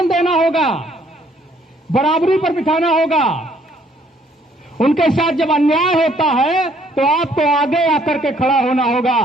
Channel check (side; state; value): both; normal; correlation 0.64